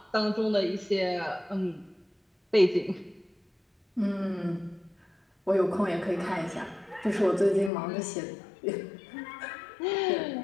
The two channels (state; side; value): drops out; right; at 7.7 s